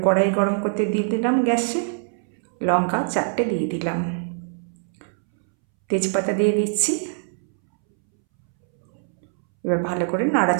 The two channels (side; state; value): left; silent; 63 dB below the other